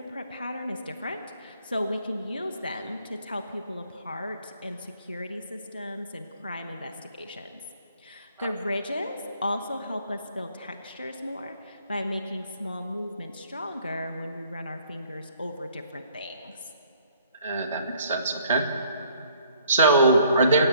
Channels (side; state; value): both; inverted; correlation -0.61